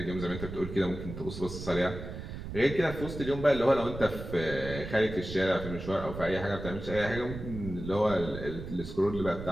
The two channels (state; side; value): noise; right; rumble, 9 dB below the sound